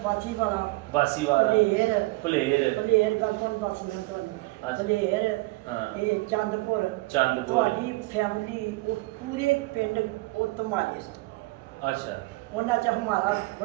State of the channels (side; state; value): left; quieter; 22.5 dB